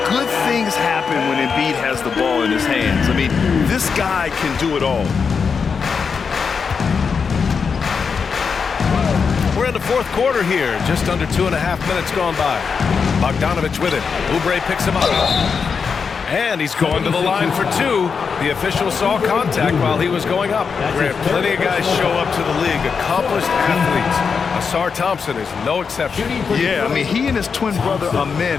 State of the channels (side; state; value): right; quieter; 5.7 dB